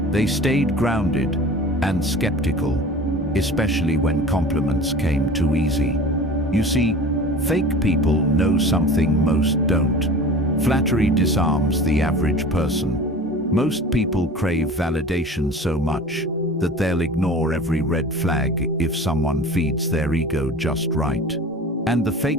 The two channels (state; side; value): normal; both; correlation 0.39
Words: They stayed grounded and skeptical, especially when compliments came too easy. You see, fake people know something most don't. Flattery disarms the average person. Most people crave validation so much that they'll ignore every red flag if someone feeds their ego just right. And the